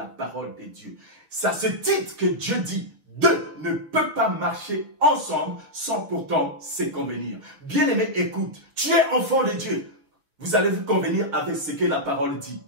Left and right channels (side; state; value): left; late; 6.8 ms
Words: parole de Dieu. Ça se titre que Dieu dit, deux ne peuvent pas marcher ensemble sans pourtant se convenir. Bien-aimé, écoute, tu es enfant de Dieu. Vous allez vous convenir avec ce que la parole dit.